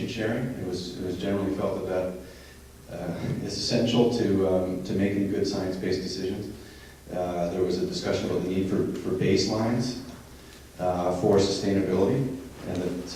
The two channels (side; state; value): both; identical; correlation 1.00